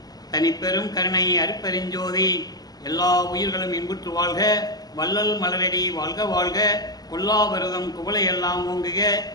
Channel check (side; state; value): right; late; 0.19 ms